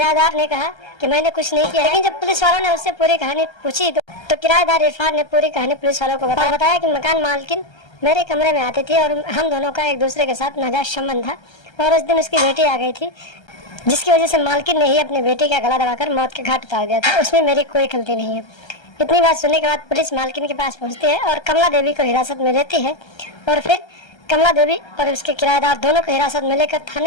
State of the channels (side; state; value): right; late; 1.3 ms